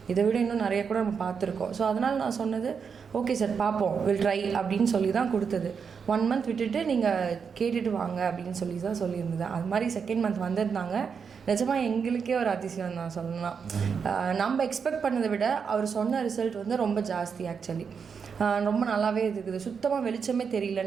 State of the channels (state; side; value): quieter; left; 6.2 dB